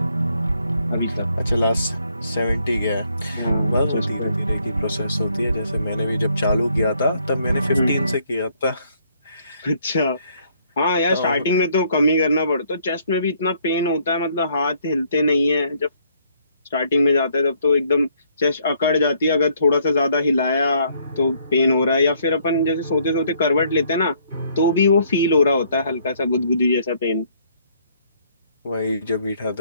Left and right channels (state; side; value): inverted; both; correlation -0.67